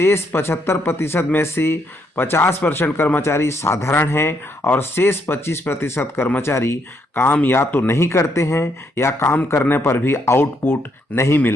75% में से 50% कर्मचारी साधारण हैं और शेष 25% कर्मचारी काम या तो नहीं करते हैं या काम करने पर भी आउटपुट नहीं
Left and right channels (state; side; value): normal; both; correlation 0.75